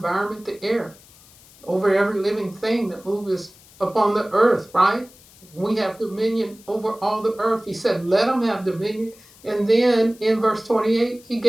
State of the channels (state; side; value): noise; left; hiss, 25 dB below the sound